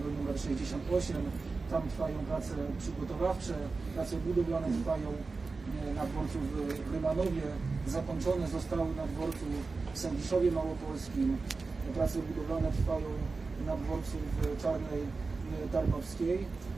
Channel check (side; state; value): left; quieter; 4.1 dB